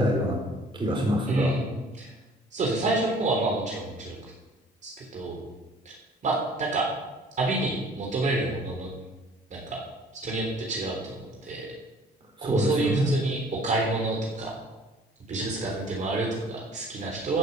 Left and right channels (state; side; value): normal; both; correlation 0.53